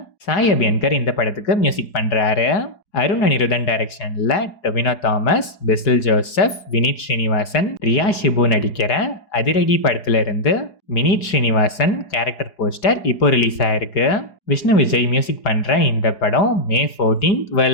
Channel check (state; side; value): late; right; 4.8 ms